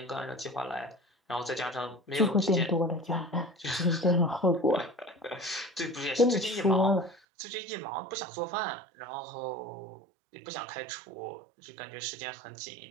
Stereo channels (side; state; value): left; drops out; at 7.2 s